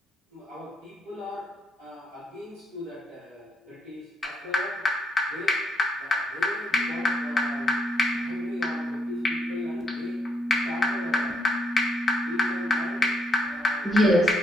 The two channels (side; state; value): both; normal; correlation 0.75